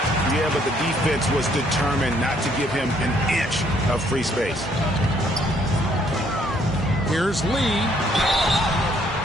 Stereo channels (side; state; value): both; normal; correlation 0.66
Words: Yeah, but the defense was determined not to give him an inch of free space. Here's Lee.